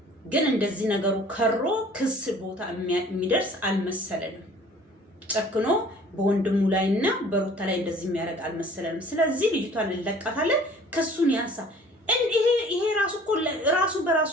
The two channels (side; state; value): both; normal; correlation 0.51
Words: ግን እንደዚህ ነገሩ ከሮ ክስ ቦታ የሚደርስ አልመሰለንም። ጨክኖ በወንድሙ ላይና በሩታ ላይ እንደዚህ የሚያደርግ አልመሰለንም። ስለዚህ ልጅቷን እንለቃታለን፣ ክሱን ያንሳ። ይሄ ራሱ እኮ ራሱ በራሱ